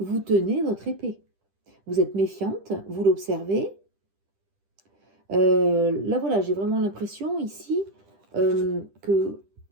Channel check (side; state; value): left; late; 10 ms